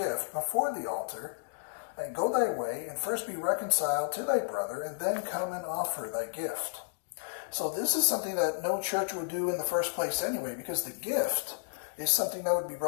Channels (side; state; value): right; silent; digital silence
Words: before the altar, and go thy way, and first be reconciled to thy brother, and then come and offer thy gift." So this is something that no church would do in the first place anyway, because the gift is something that would be